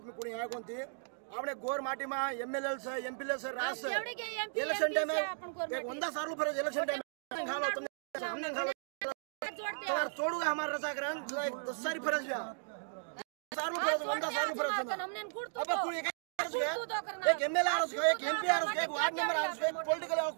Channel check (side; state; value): left; silent; digital silence